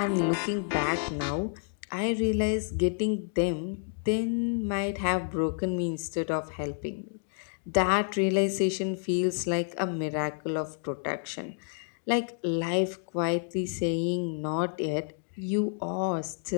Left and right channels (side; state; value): right; silent; digital silence